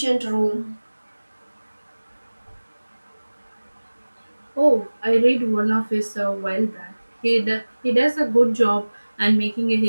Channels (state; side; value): inverted; both; correlation -1.00